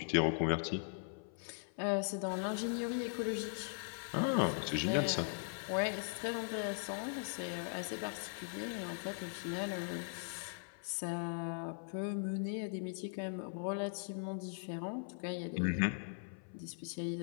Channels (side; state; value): right; silent; 51 dB below the other